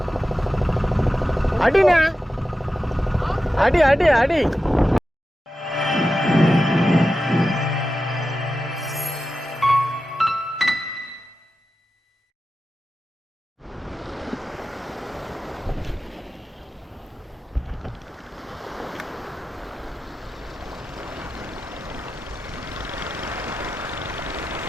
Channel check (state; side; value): normal; both; correlation 0.92